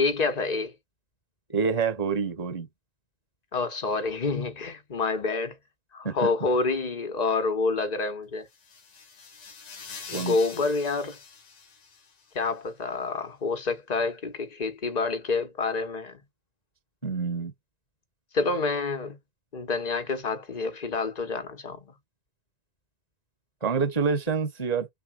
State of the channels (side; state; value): right; late; 1.9 ms